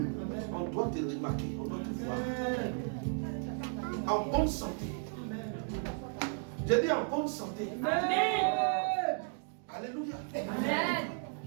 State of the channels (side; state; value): left; silent; 55 dB below the other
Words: On doit te remarquer, on doit te voir. En bonne santé. J'ai dit en bonne santé. Amen. Alléluia. Amen.